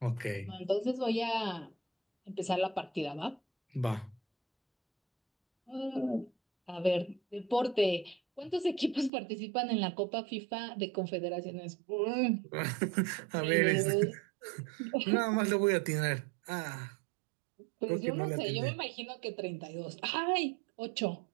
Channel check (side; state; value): left; drops out; at 9.1 s